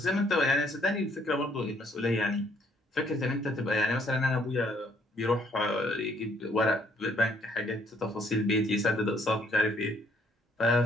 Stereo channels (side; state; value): both; normal; correlation 0.65